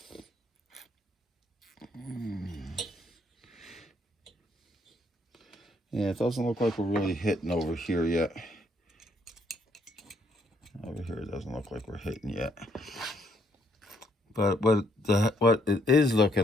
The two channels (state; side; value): normal; both; correlation 0.70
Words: Yeah, it doesn't look like we're really hitting over here yet. Over here, it doesn't look like we're hitting yet. But what it is